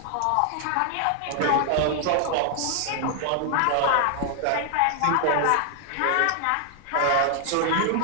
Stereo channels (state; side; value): different; both; correlation 0.00